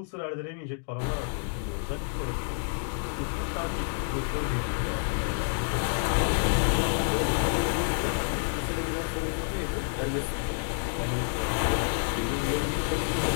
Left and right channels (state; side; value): silent; right; 59 dB below the other